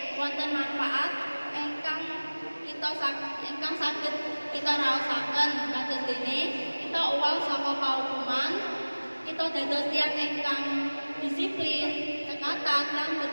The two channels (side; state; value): both; inverted; correlation -1.00